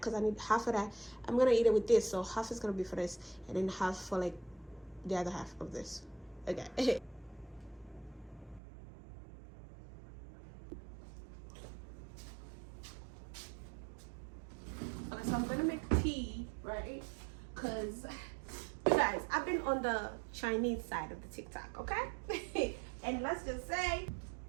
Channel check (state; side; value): drops out; left; at 8.6 s